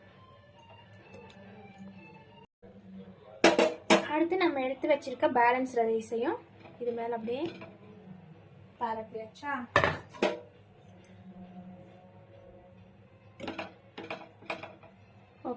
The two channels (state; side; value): identical; both; correlation 1.00